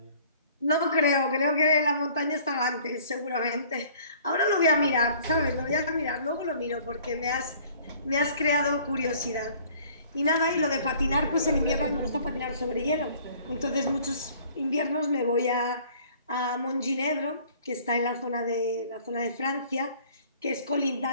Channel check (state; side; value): inverted; both; correlation -0.54